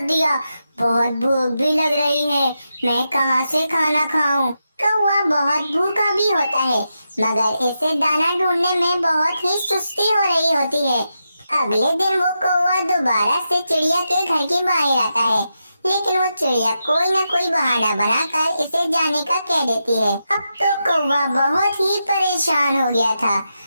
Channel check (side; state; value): both; inverted; correlation -0.87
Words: दिया? बहुत भूख भी लग रही है, मैं कहाँ से खाना खाऊं? कौवा बहुत भूखा भी होता है, मगर इसे दाना ढूंढने में बहुत ही सुस्ती हो रही होती है। अगले दिन वो कौवा दोबारा से चिड़िया के घर के बाहर आता है, लेकिन वो चिड़िया कोई न कोई बहाना बनाकर इसे जाने का कह देती है। अब तो कौवा बहुत ही परेशान हो गया था,